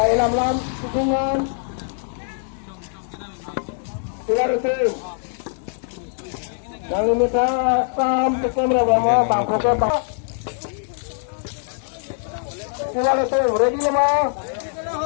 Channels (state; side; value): silent; right; digital silence